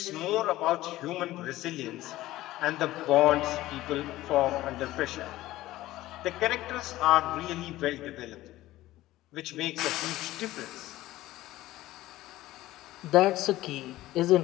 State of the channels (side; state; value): right; quieter; 16.2 dB